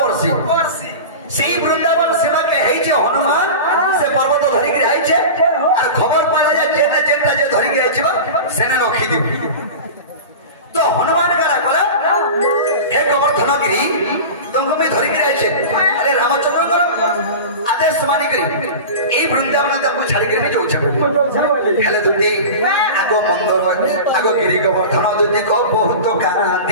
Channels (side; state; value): both; inverted; correlation -0.30